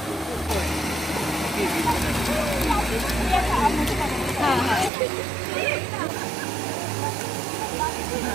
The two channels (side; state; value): left; drops out; at 4.9 s